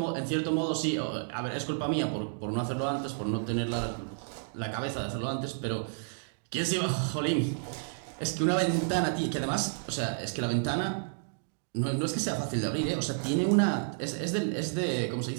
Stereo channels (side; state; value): left; silent; digital silence